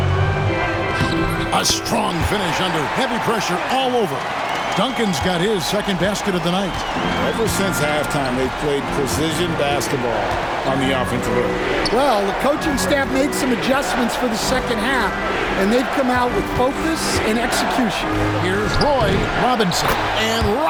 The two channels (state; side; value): identical; both; correlation 1.00